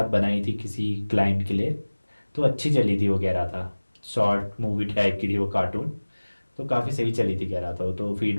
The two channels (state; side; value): inverted; both; correlation -1.00